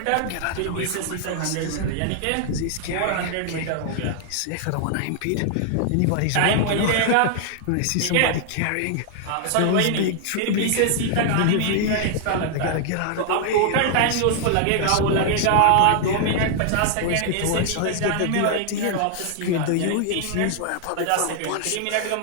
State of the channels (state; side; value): different; both; correlation 0.00